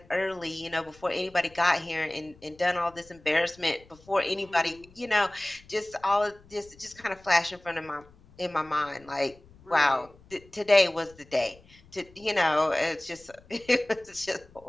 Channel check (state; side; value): noise; left; rumble, 26 dB below the sound